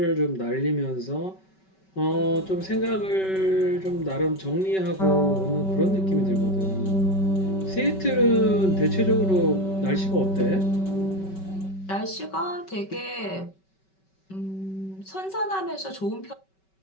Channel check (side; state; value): right; late; 5.2 ms